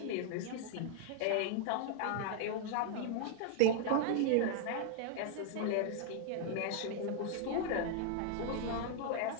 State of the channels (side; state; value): both; different; correlation 0.00